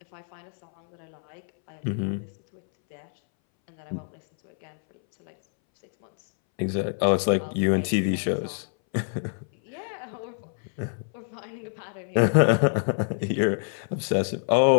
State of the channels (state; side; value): silent; right; 61 dB below the other